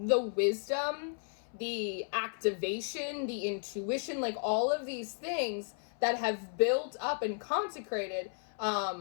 wisdom, the activation, the intuition, like, all of these things that have built up and consecrated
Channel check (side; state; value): right; silent; 55 dB below the other